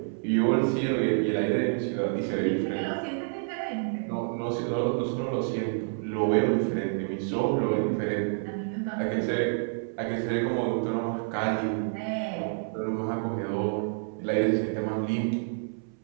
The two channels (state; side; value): silent; left; 59 dB below the other